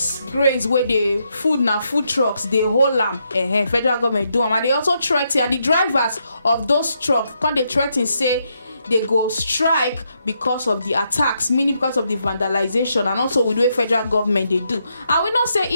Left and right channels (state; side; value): inverted; both; correlation -0.79